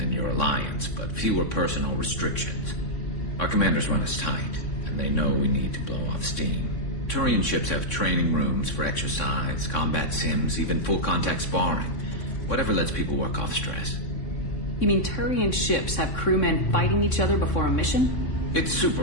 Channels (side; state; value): right; late; 3.6 ms